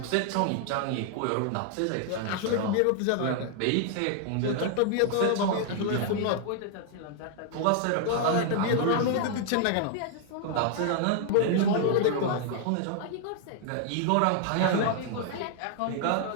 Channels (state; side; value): different; both; correlation 0.00